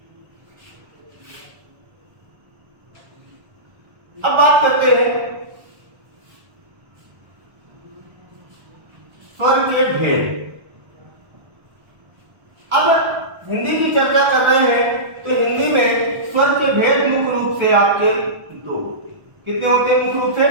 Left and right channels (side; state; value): left; late; 1.3 ms